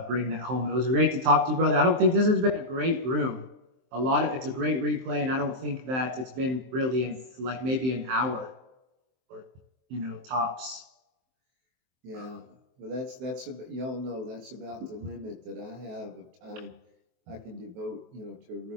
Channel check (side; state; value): left; late; 23 ms